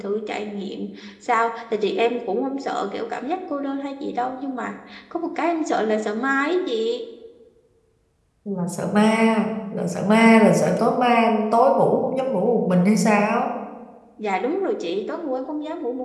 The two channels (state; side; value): identical; both; correlation 1.00